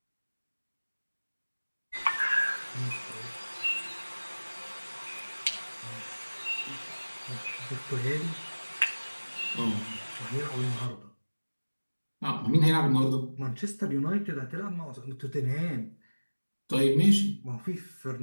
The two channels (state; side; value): inverted; both; correlation -1.00